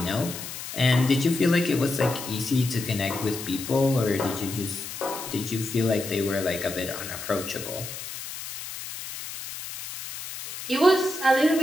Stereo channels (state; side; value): noise; left; hiss, 9 dB below the sound